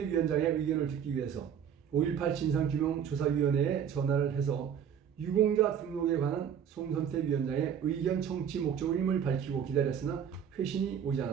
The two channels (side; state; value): left; quieter; 8.3 dB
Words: 위원장의 의견을 듣기 위해서 5.18 진상규명조사위원회에 전화를 해서 유공자 등록에 관한 송선태 위원장의 의견 청취 목적임을 밝히고 기다렸으나 회신이 오지